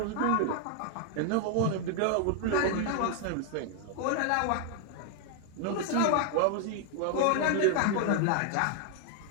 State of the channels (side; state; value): both; different; correlation 0.00